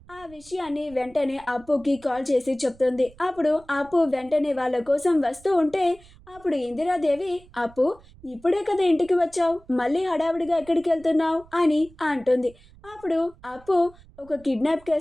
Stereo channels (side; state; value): right; noise; rumble, 24 dB below the sound